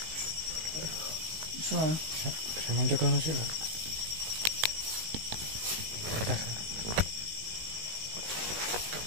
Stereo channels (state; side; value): late; left; 19 ms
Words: Bisa. Sama cek kalau sih, Pak. Bentar.